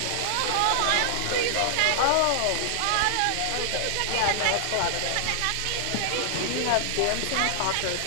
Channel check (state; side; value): different; both; correlation -0.01